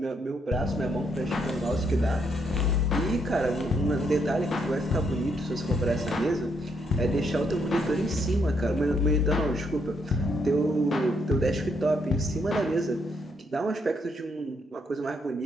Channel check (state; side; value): normal; both; correlation 0.74